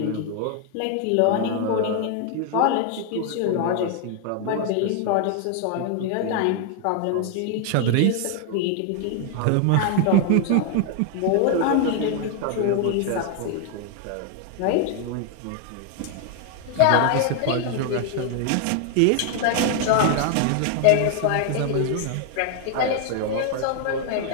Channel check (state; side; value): different; both; correlation 0.00